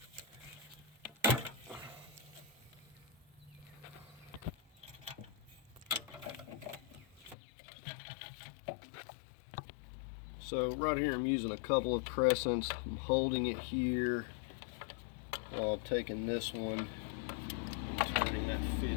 So right here I'm using a couple of crescents. I'm holding it here while I'm taking this one and turning that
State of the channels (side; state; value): right; drops out; at 7.4 s